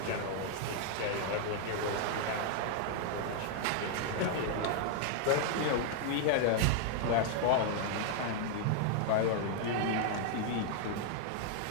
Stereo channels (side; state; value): both; different; correlation 0.00